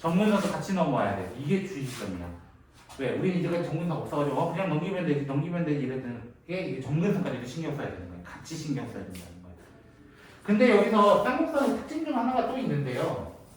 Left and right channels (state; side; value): identical; both; correlation 1.00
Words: 같이 넘어와야 돼. 이게 주의점이야. 왜? 우리는 이제까지 정근선 없어가지고 그냥 넘기면 되지 이랬던 게 이게 정근선까지도 신경 써야 되는 거야. 같이 신경 써야 된다는 거야. 근데 여기서 쌍곡선의 특징 중 하나가 또 있는데요.